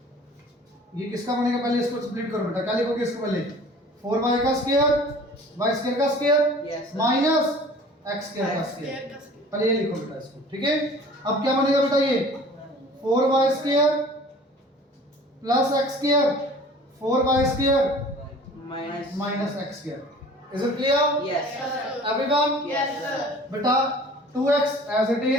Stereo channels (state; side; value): normal; both; correlation 0.46